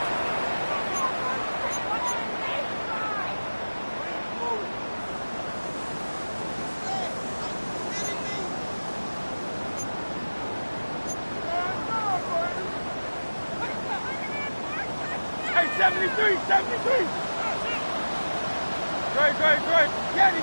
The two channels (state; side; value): inverted; both; correlation -1.00